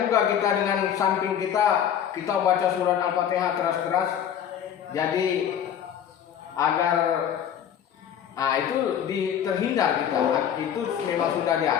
kita dengan samping kita baca surat Al-Fatihah keras-keras. Jadi agar itu terhindar kita. Itu memang sudah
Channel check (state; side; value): quieter; right; 9.3 dB